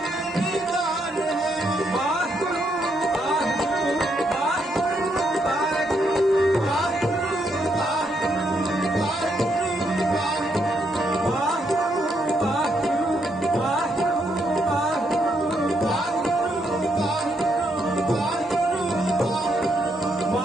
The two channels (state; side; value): normal; both; correlation 0.76